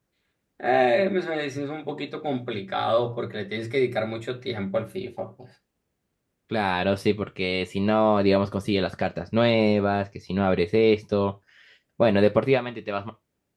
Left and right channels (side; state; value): both; identical; correlation 1.00